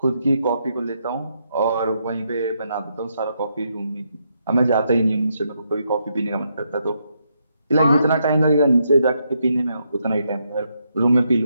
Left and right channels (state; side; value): inverted; both; correlation -0.79